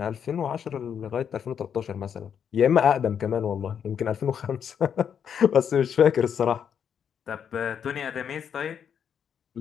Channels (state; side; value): quieter; right; 8.0 dB